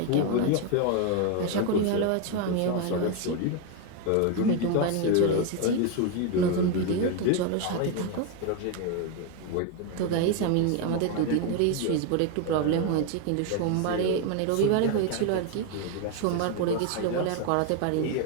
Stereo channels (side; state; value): both; different; correlation 0.02